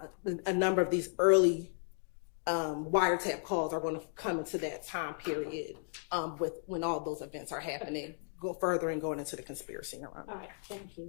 A number of these early wiretap calls are going to come into that time period with when all those events are happening, go further and going into the conspiracy. All right, thank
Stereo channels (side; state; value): right; silent; digital silence